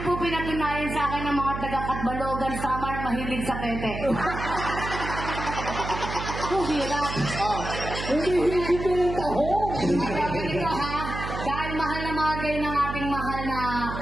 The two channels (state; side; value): noise; right; hum, 6 dB below the sound